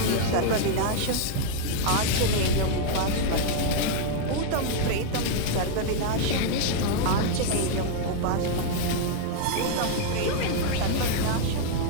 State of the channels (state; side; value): different; both; correlation 0.00